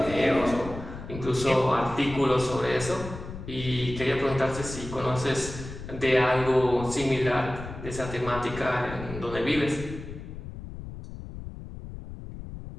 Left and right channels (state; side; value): noise; left; rumble, 11 dB below the sound